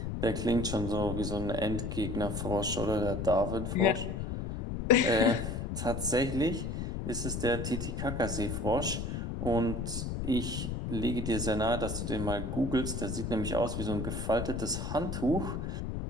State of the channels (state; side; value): noise; left; rumble, 3 dB below the sound